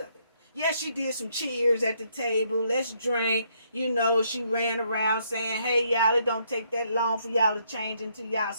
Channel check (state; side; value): inverted; both; correlation -0.72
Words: it. Yeah, she did some cheers at the table. Let's drink. You know, she ran around saying, hey, y'all, it don't take that long for y'all to change into y'all